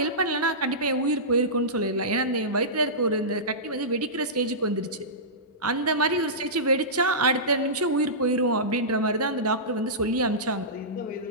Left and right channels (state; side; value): normal; both; correlation -0.19